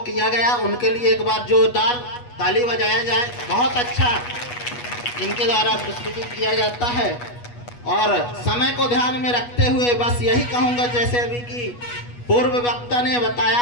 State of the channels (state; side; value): late; right; 8.3 ms